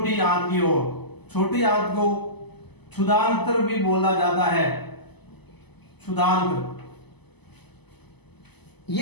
आंत की ओर। छोटी आंत को क्षुधांत्र भी बोला जाता है, क्षुधांत्र।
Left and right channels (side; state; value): right; late; 0.99 ms